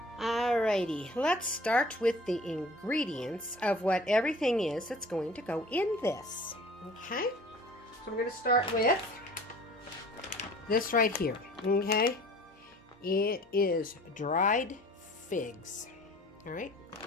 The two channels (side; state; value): both; normal; correlation 0.47